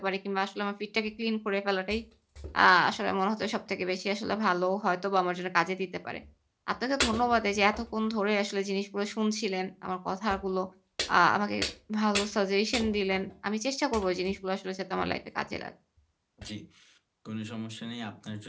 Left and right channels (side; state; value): both; identical; correlation 1.00